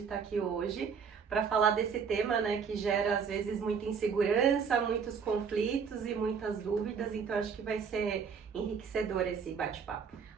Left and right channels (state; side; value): quieter; left; 6.3 dB